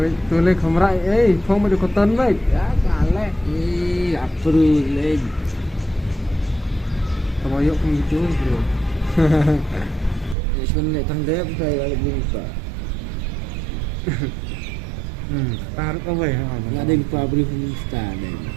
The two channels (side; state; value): left; drops out; at 10.4 s